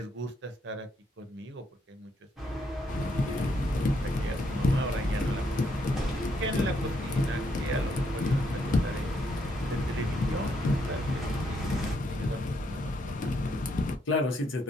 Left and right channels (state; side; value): normal; both; correlation 0.75